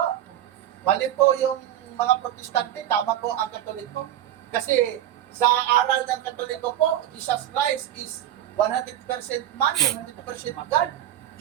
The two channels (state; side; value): quieter; left; 11.8 dB